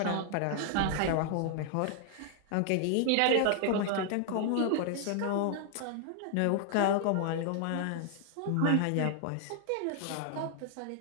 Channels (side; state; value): both; different; correlation 0.00